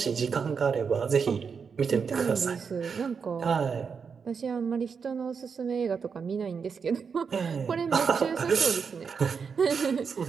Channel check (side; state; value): left; quieter; 6.0 dB